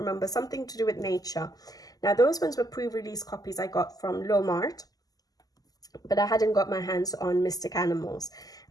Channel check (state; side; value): late; right; 0.17 ms